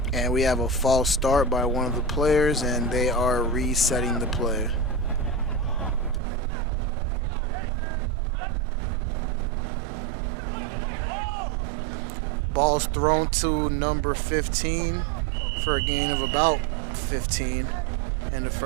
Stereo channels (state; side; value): drops out; left; at 6.2 s